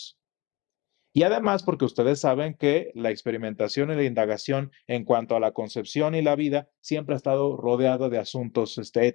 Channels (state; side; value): quieter; right; 22.9 dB